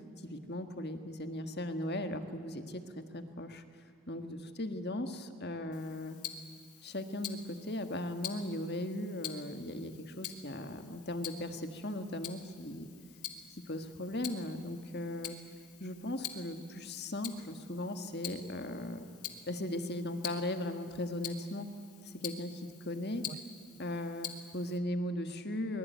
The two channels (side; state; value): both; normal; correlation 0.46